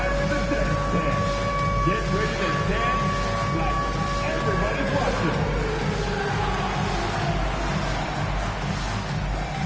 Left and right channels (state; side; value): identical; both; correlation 1.00